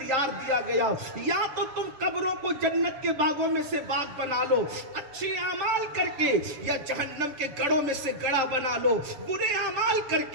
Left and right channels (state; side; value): late; left; 7.2 ms